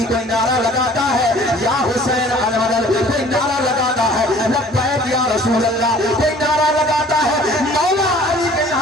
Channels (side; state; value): both; normal; correlation 0.51